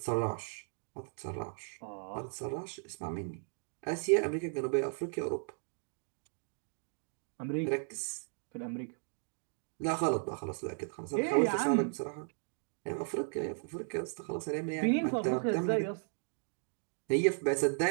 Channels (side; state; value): left; silent; 54 dB below the other